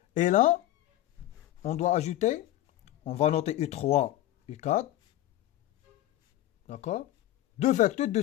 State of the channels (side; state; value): right; quieter; 14.3 dB